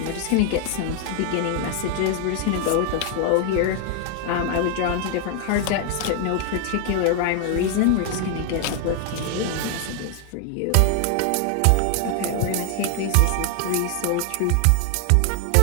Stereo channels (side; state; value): both; different; correlation 0.00